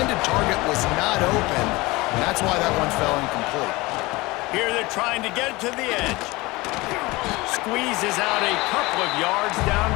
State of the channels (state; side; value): quieter; right; 22.0 dB